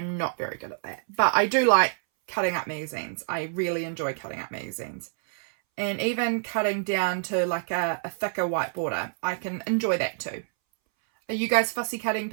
not very good at that, but I do like cutting up magazines. I really enjoy cutting up magazines. And even cutting down to like a thicker white border, I can enjoy that too. Are you guys fussy cutting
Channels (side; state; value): left; silent; 60 dB below the other